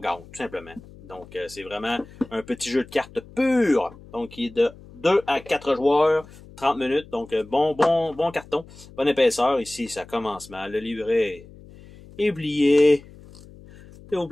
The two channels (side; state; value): left; noise; hum, 21 dB below the sound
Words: tout simplement. Donc, c'est vraiment un petit jeu de cartes pur. Donc, qui est de 2 à 4 joueurs, 30 minutes. Donc, bon carton, bonne épaisseur. Ici, ça commence mal. Le livret est oublié. S'il vous